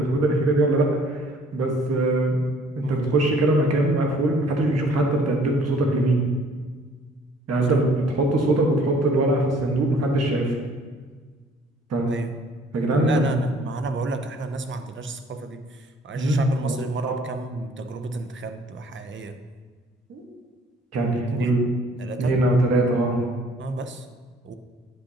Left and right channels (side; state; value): both; normal; correlation 0.57